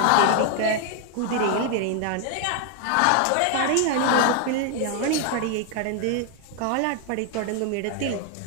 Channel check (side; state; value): both; different; correlation 0.00